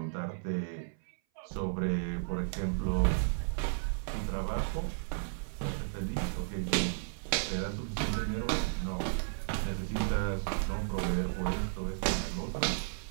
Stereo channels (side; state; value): left; silent; 55 dB below the other